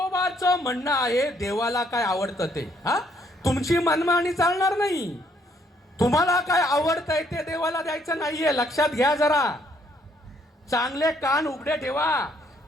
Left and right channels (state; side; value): normal; both; correlation 0.68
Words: म्हणणं आहे, देवाला काय आवडतं ते, हा तुमची मनमानी चालणार नाही. तुम्हाला काय आवडतंय ते देवाला द्यायचं नाहीये, लक्षात घ्या जरा. चांगले कान उघडे ठेवा.